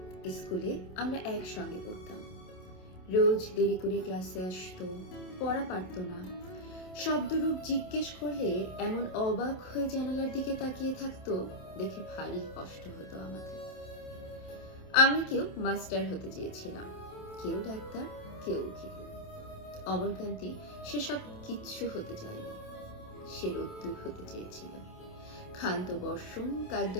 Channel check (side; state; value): right; late; 27 ms